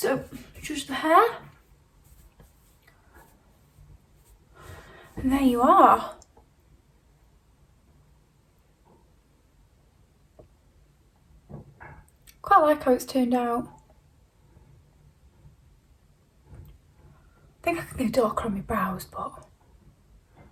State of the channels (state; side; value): identical; both; correlation 1.00